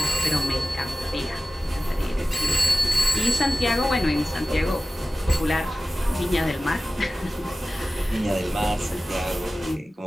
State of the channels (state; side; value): normal; both; correlation 0.94